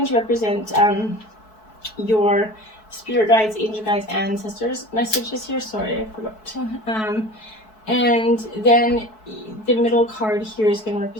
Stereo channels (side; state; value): right; late; 4.6 ms